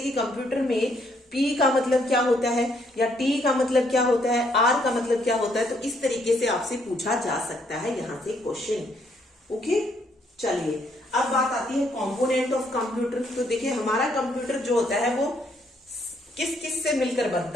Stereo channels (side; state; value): both; normal; correlation 0.70